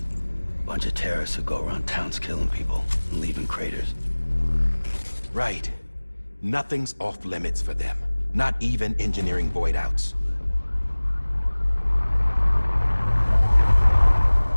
Bunch of terrorists who go around towns killing people and leaving craters. Right. Nothing's off limits for them. Not even engineering void outs.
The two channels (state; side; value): inverted; both; correlation -1.00